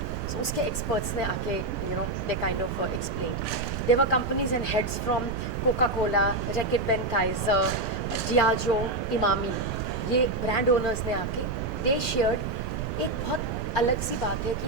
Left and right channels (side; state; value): right; noise; rumble, 5 dB below the sound